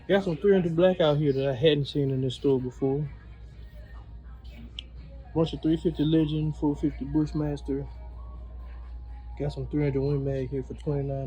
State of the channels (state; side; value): identical; both; correlation 1.00